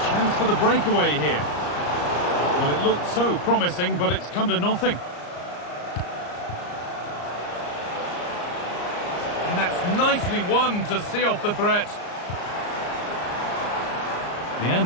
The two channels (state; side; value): late; right; 34 ms